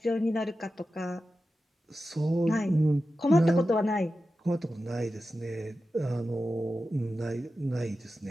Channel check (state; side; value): normal; both; correlation 0.92